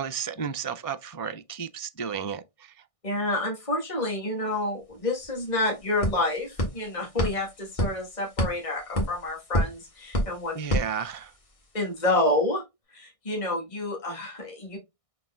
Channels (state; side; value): late; right; 1.6 ms